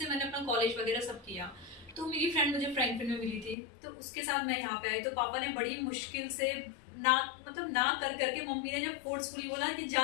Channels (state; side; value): drops out; right; at 3.6 s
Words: मैंने अपना कॉलेज वगैरह सब किया। तो मेरी फ्रेंड मुझे फ्रैंकफिन में मिली थी, तो उसके साथ मैं यहाँ पे आई। तो पापा ने बड़ी मुश्किल से ना कर करके मम्मी ने जब फोर्सफुली बोला कि